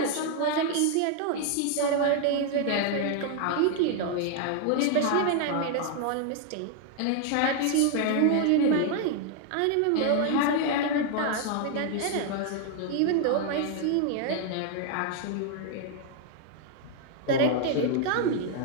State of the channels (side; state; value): both; different; correlation 0.00